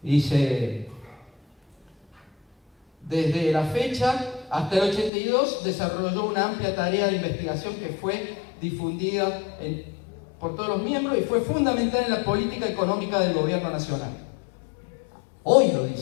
Dice, desde la fecha hasta el 82 desarrolló una amplia tarea de investigación que fue difundida por todos los miembros y fue fundamental en la política económica del gobierno nacional. Hoy lo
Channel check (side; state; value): right; drops out; at 5.1 s